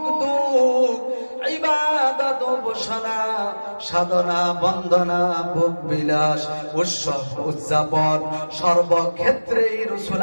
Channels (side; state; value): both; inverted; correlation -1.00